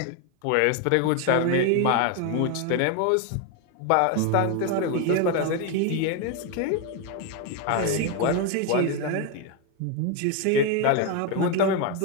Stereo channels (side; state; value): both; different; correlation 0.02